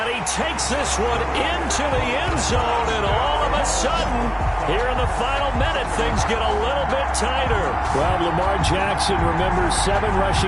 he takes this one into the end zone, and all of a sudden, here in the final minute, things get a little bit tighter. Well, Lamar Jackson remembers 7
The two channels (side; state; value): both; identical; correlation 1.00